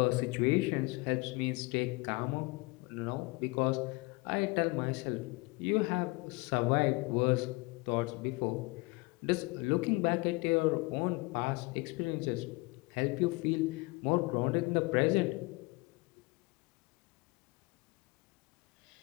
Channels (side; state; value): right; quieter; 25.9 dB